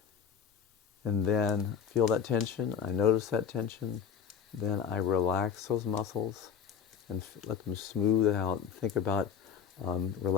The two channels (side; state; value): right; quieter; 7.6 dB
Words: And then feel that tension. I notice that tension. Then I relax those muscles and let them smooth out. Think about